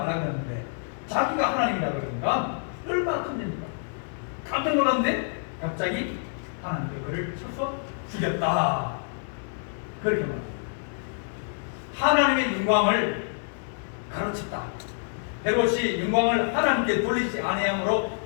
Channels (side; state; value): right; silent; digital silence